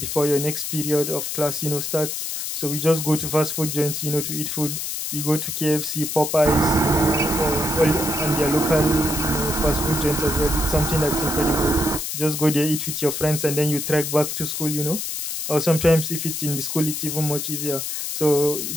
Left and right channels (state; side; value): noise; left; hiss, 4 dB below the sound